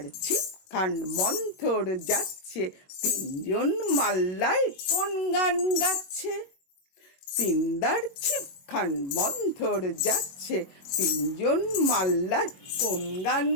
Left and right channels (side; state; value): right; late; 21 ms